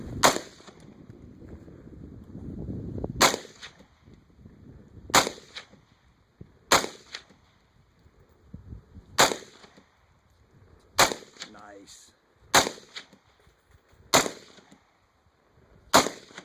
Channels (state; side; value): identical; both; correlation 1.00